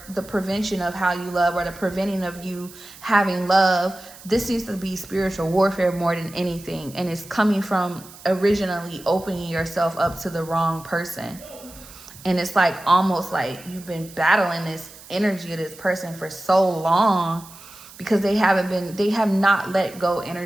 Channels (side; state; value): right; noise; hiss, 19 dB below the sound